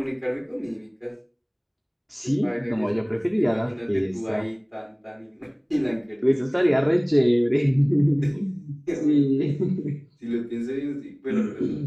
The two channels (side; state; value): both; identical; correlation 1.00